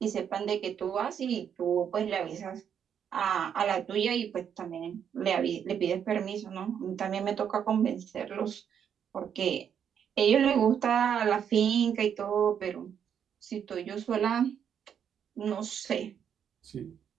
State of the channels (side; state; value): left; quieter; 8.3 dB